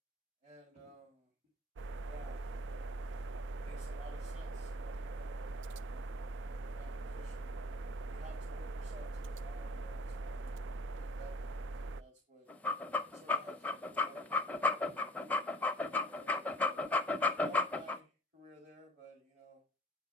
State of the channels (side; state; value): both; normal; correlation 0.49